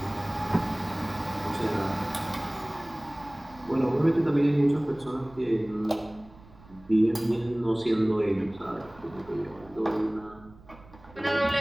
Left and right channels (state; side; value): noise; right; rumble, 23 dB below the sound